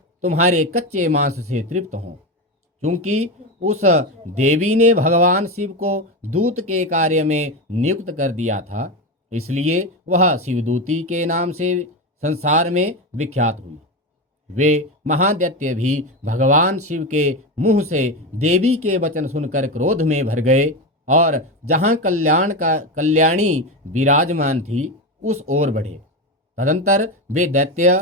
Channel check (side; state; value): both; normal; correlation 0.16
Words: तुम्हारे कच्चे मांस से तृप्त हों। क्योंकि उस देवी ने भगवान शिव को दूत के कार्य में नियुक्त कर दिया था, इसलिए वह शिवदूती के नाम से संसार में विख्यात हुई। वे महादैत्य भी भगवान शिव के मुंह से देवी के वचन सुनकर क्रोध में भर गए और जहां कल्याणी विराजमान थी उस ओर बढ़े। तदंतर वे